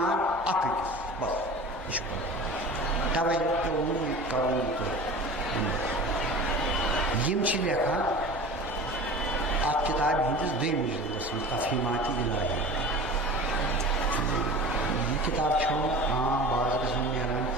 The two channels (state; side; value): normal; both; correlation 0.37